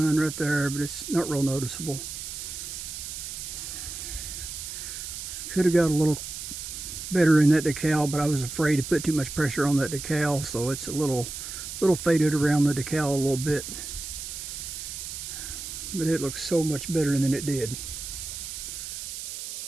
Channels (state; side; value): noise; right; hiss, 8 dB below the sound